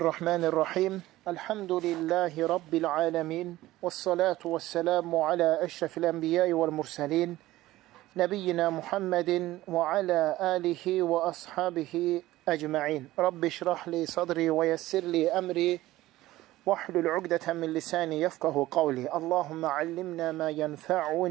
Elhamdülillahi Rabbil alemin. Vessalatu vesselamu ala eşrefil enbiyai vel murselin. Nebiyyina Muhammedin ve ala alihi ve ashabihi ecma'in. Rabbi şrahli sadri ve yessirli emri. Vahlul ugdeten min lisani yefkahu kavli. Allahümme allimna ma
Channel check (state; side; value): quieter; left; 16.5 dB